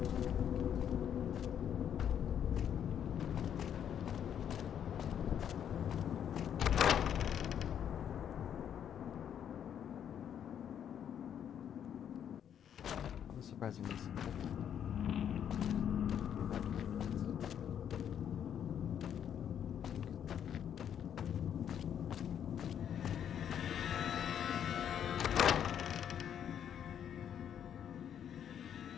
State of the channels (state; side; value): quieter; right; 9.1 dB